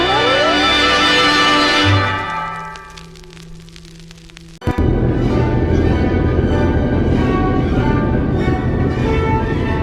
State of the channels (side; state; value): both; identical; correlation 1.00